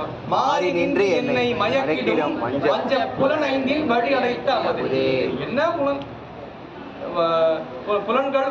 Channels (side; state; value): both; identical; correlation 1.00